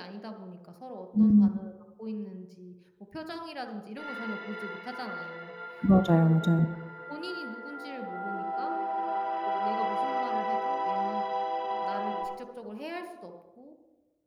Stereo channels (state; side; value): identical; both; correlation 1.00